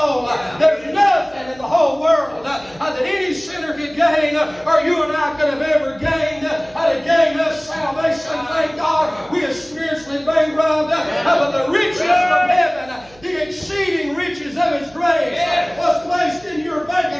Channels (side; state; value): right; noise; hum, 26 dB below the sound